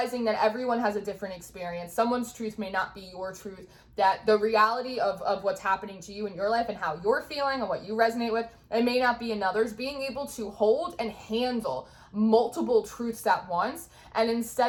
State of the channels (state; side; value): identical; both; correlation 1.00